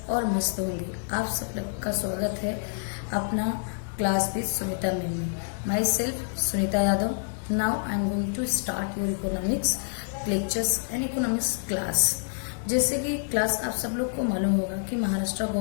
और मस्त होंगे। आप सब लोग का स्वागत है अपना क्लास विद सुनीता मैम में। Myself Sunita Yadav. Now I am going to start your economics lectures and economics class. जैसे कि क्लास आप सब लोग को मालूम होगा कि महाराष्ट्र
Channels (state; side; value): silent; right; digital silence